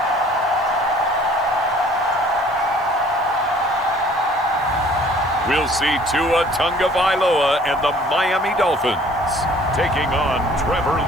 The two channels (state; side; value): noise; right; hiss, 28 dB below the sound